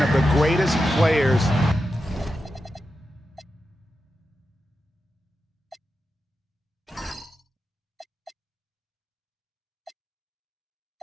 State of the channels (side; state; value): both; normal; correlation 0.89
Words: of the greatest players